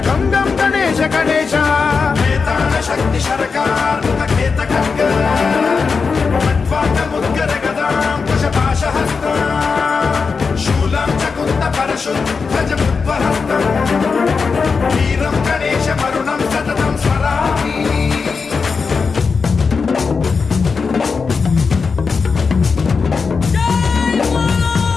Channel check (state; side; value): quieter; right; 5.1 dB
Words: गम गम गणेश गणेश वेताल शक्ति शरकार मुखखेत खड्ग खट्वाङ्गमुद्गर गदां कुशपाशहस्तां शूलं च कुन्द परशुध्वजमुद्वहस्तम् वीरं गणेशवरुणं सततं स्मरामि।